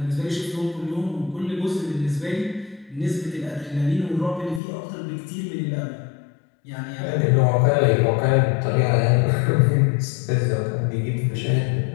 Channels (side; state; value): right; drops out; at 4.6 s